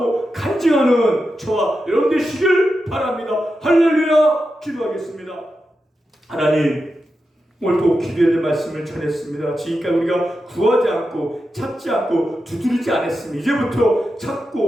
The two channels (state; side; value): normal; both; correlation 0.89